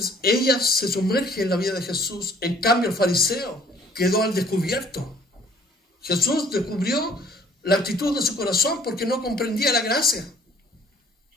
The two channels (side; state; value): both; normal; correlation 0.55